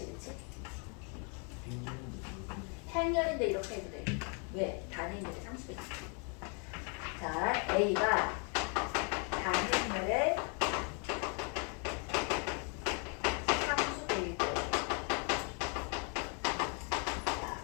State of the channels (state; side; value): quieter; right; 37.2 dB